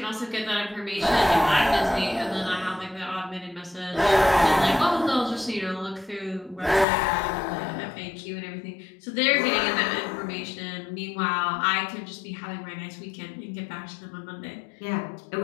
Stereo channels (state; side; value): drops out; right; at 6.9 s